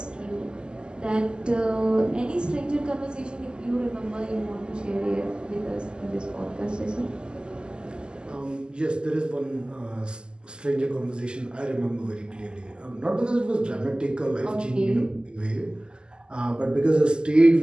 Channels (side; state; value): left; late; 0.048 ms